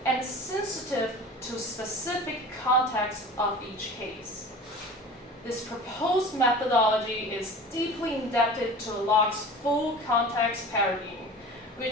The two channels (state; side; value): normal; both; correlation 0.38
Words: and sensitive to specific context of each case. This proposed methodology is deeply indebted to Locke's full context paradigm,